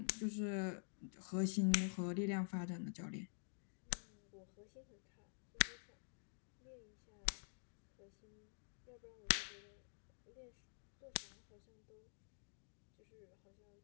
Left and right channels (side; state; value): right; silent; digital silence